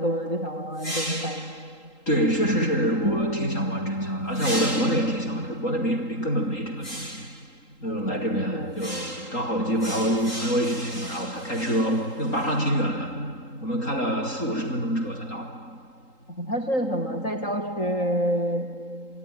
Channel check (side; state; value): right; late; 3.8 ms